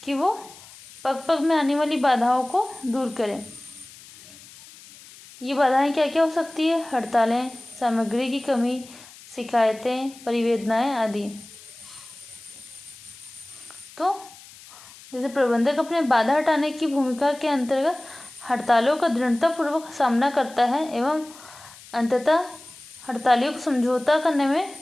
कि वो पग पग में आने वाली बाधाओं को दूर करें। ये बाधाएं क्या क्या हो सकती है? हड़तालें, सामग्री की कमी, शिकायतें, परिवेदनाएं आदि। तो जैसे प्रबंधक अपने बाधा हटाने की भूमिका के अंतर्गत हड़तालों का दृढ़तापूर्वक सामना करता है एवं अंततः हड़तालियों को समझौता करने में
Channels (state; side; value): noise; left; hiss, 20 dB below the sound